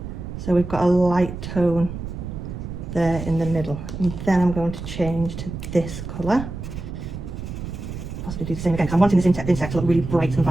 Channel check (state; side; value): noise; right; rumble, 8 dB below the sound